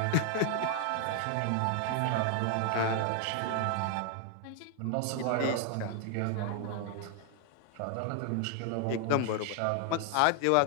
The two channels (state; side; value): different; both; correlation 0.00